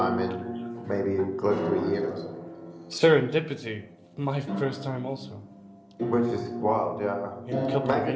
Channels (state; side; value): identical; both; correlation 1.00